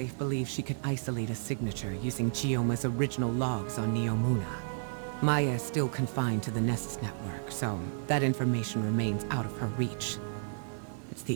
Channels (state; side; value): silent; left; digital silence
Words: believes she could isolate a signature using Chioma's original logs on Neomuna. Maya is still confined to the Nessus network, so that information remains out of her reach. It's